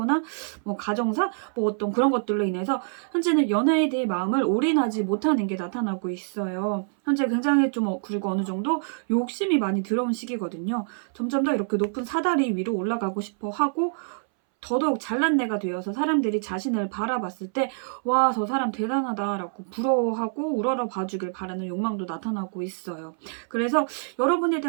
뭐 가정사, 뭐 어떤 그런 것들로 인해서 현재는 연애에 대해 마음을 올인하지 못하는 게 나타나고 있어요. 현재 굉장히 좀 그리고 어느 정도 욕심이 많이 들어온 시기거든요. 점점 더 이렇게 높은 사다리 위로 올라가고 싶어 하고 더더욱 잘난 내가 되어서 사람들이 자신을 바라봤을 때 와, 저 사람 대단하다라고 부러워하고 우러러 봐주길 바라는 욕망도 나타나고 있어요. 그래서 여러분에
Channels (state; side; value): silent; left; 61 dB below the other